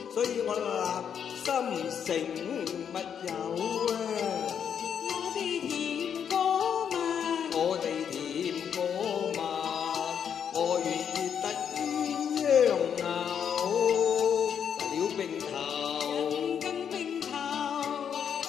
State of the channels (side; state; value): right; quieter; 8.0 dB